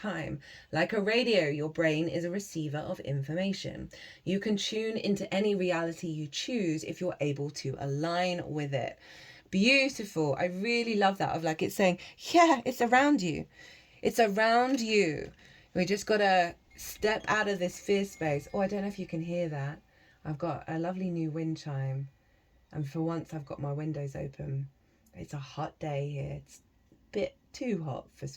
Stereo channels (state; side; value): identical; both; correlation 1.00